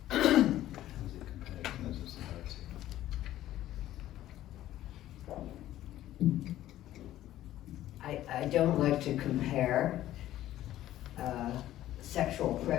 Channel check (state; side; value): quieter; right; 13.7 dB